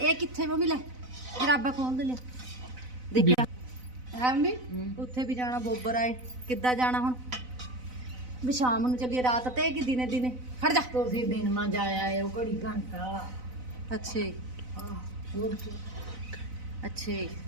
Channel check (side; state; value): left; late; 4.0 ms